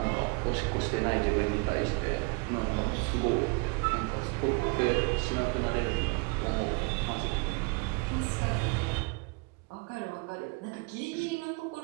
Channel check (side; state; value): left; quieter; 31.2 dB